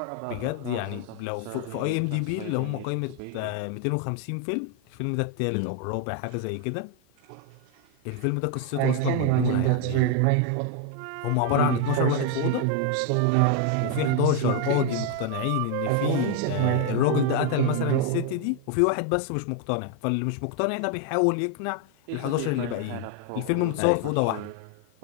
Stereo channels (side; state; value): both; different; correlation 0.01